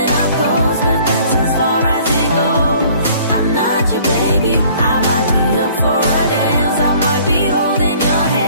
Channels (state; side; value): inverted; both; correlation -0.54